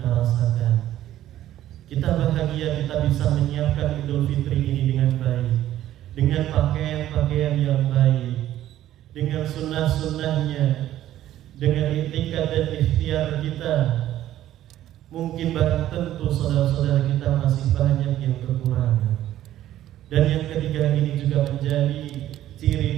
rasakan. Kita bahagia kita bisa menyiapkan Idul Fitri ini dengan baik, dengan pakaian-pakaian yang baik, dengan sunnah-sunnahnya, dengan itikad dan ikhtiar kita. Mungkin barang tentu saudara-saudara kita masih banyak yang kekurangan. Dan yang ketiga ini juga menjadi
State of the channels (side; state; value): left; quieter; 12.9 dB